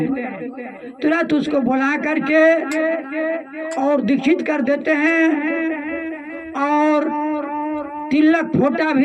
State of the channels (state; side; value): identical; both; correlation 1.00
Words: तुरंत उसको बुला करके और दीक्षित कर देते हैं और तिलक फोटा